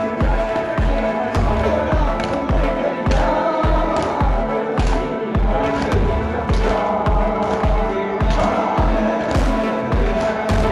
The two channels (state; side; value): identical; both; correlation 1.00